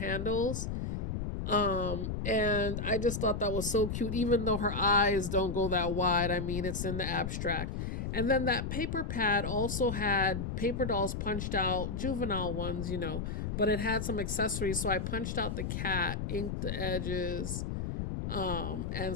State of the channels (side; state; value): left; noise; rumble, 3 dB below the sound